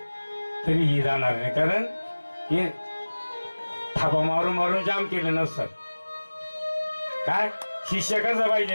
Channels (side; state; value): both; inverted; correlation -1.00